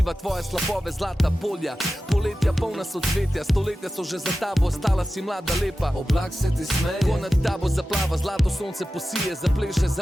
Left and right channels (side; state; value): both; normal; correlation 0.94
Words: tvoje slapove. Zlata polja, poletja polna socvetja. Stoletja so že za tabo, ostala si mlada lepa. Oblak se ti smeje, ko nad tabo zaplava. Zlato sonce posije, zapleše